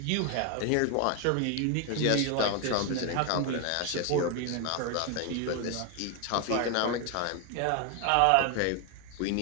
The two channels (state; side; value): different; both; correlation 0.01